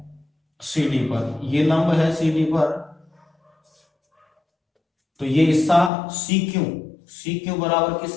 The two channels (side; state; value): right; drops out; at 5.9 s